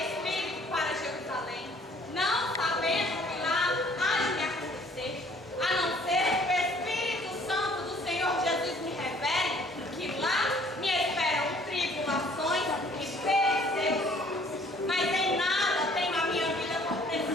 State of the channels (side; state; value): both; normal; correlation 0.58